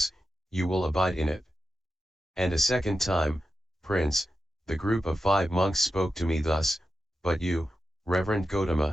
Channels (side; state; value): both; normal; correlation 0.90